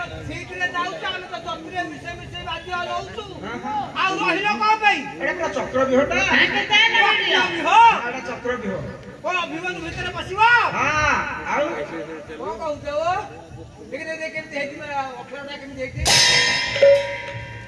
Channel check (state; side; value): identical; both; correlation 1.00